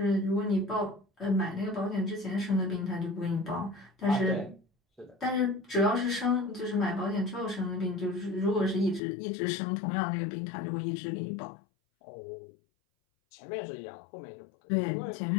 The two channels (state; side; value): drops out; right; at 9.0 s